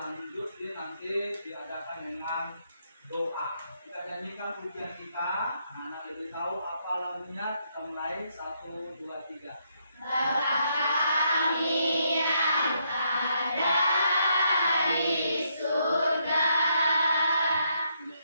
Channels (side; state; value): both; inverted; correlation -0.75